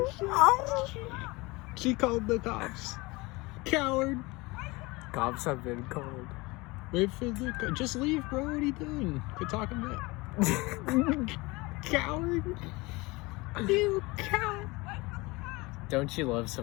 shit. She called the cops. Coward. Cops have been called. Wait for the... Just leave, bro. What are you doing? Quit talking back. Coward. You coward. Don't you love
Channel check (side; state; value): right; quieter; 23.6 dB